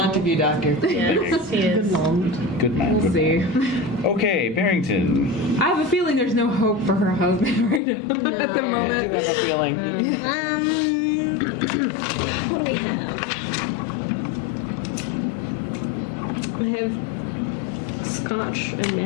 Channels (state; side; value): drops out; right; at 7.8 s